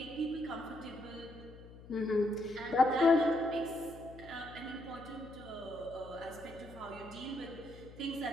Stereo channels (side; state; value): left; noise; hum, 17 dB below the sound